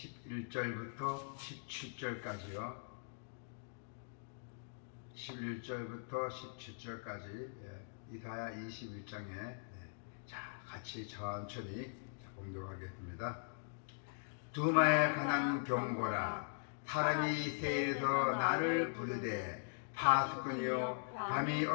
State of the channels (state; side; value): silent; right; digital silence